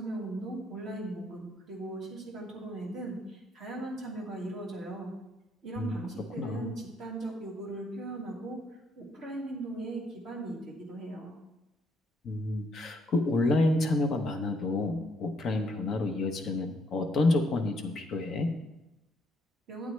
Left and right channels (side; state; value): both; normal; correlation 0.72